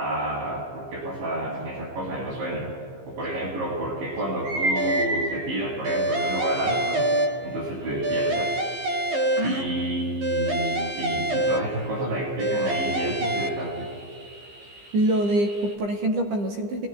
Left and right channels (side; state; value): left; late; 15 ms